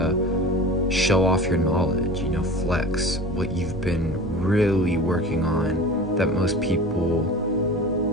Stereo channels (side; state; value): both; normal; correlation 0.36